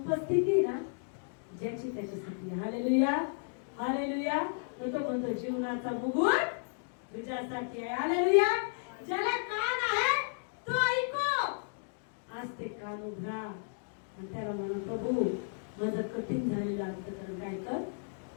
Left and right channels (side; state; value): right; silent; digital silence